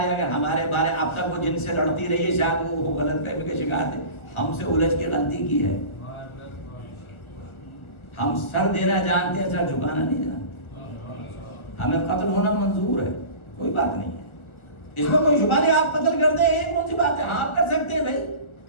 ہے. اگر ہمارے بارے اب تک وہ جن سے لڑتی رہی ہے شاید وہ غلط فہمی کا شکار تھے. ہم سے الجھ کے غلطی کی ہے. ہم سر دینا جانتے ہیں, سر جھکانا نہیں جانتے. ہمیں قتل ہونا منظور ہے, کوئی بات نہیں ہے, اس میں کوئی شبہ نہیں. آپ قتل کر دیں یہ کون سی بات ہے, ہاں آپ کر سکتے ہیں بھائی,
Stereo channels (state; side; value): late; right; 1.4 ms